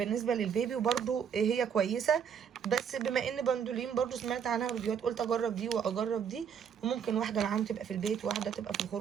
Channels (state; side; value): quieter; left; 7.7 dB